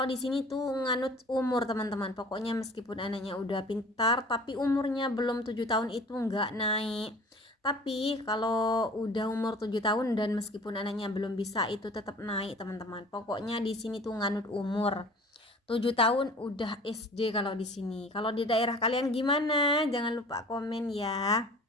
di sini tuh nganut umur teman-teman. Pokoknya meskipun anaknya udah pintar tapi umurnya belum 7 tahun itu nggak naik. Tapi kalau udah umur 7 tahun dan meskipun anaknya belum bisa itu tetap naik teman-teman. Pokoknya di sini tuh nganut umur. 7 tahun udah SD kalau di sini. Kalau di daerah kalian gimana? Jangan lupa komen ya.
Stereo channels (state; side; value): normal; both; correlation 0.45